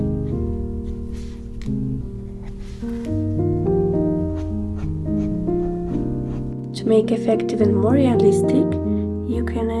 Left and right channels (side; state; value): both; identical; correlation 1.00